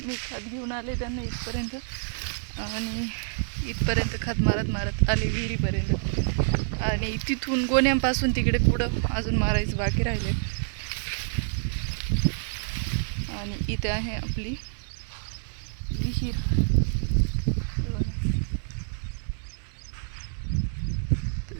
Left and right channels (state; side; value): silent; left; digital silence